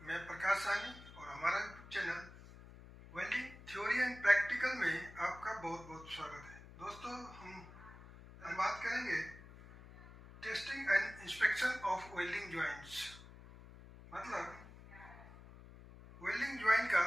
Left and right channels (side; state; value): left; noise; hum, 18 dB below the sound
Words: मैं प्रकाश सानी और हमारा YouTube channel welding theory and practical में आपका बहुत बहुत स्वागत है। दोस्तों हम बात करेंगे testing and inspection of welding joints, मतलब वेल्डिंग जॉइंट